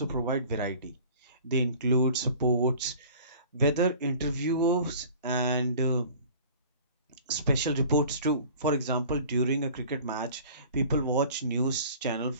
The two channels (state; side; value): inverted; both; correlation -0.46